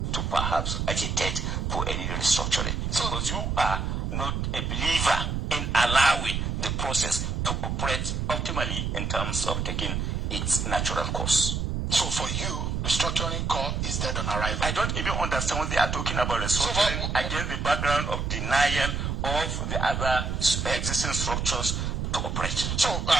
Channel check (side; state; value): right; noise; rumble, 1 dB below the sound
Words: to perhaps agitate for any restructuring. Because you are not a believer in allowing the process to operate optimally in terms of taking its natural course. So for you, restructuring call is dead on arrival. I don't even understand what they are talking about restructuring against the background of denial of the other existing structures to operate. So